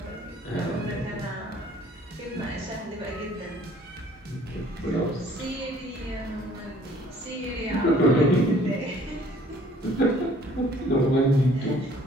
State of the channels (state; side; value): normal; both; correlation 0.57